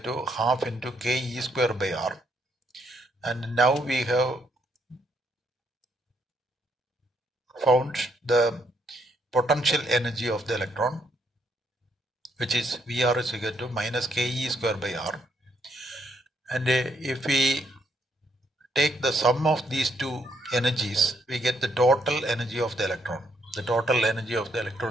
half into ke square by r, and now we have found the potential energy of the electron, which is Vr is equal to minus ke square by r, and if we take the sum of these two energies, we get the total energy of the electron. The total energy of the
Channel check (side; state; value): both; normal; correlation 0.73